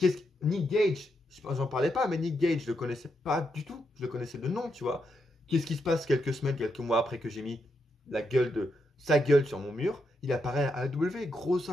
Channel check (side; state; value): both; normal; correlation 0.82